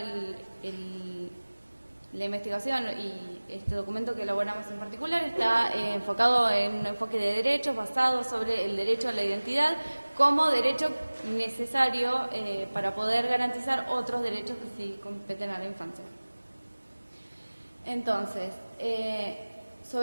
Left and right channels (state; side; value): inverted; both; correlation -1.00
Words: la investigación y este documento que elaboramos en particular está enfocado en un enfoque de derechos basado sobre el derecho a la identidad como derecho necesario para poder garantizar otros derechos que sí competen a la infancia. Entonces,